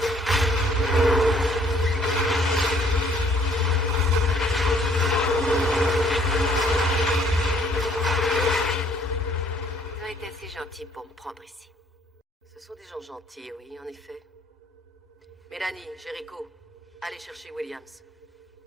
Vous avez été assez gentil pour me prendre ici. Ce sont des gens gentils, oui, en effet. Mélanie, Jericho, allez chercher Williams.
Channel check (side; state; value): both; normal; correlation 0.62